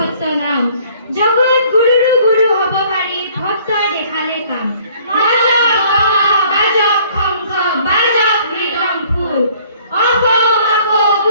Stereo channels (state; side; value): inverted; both; correlation -0.57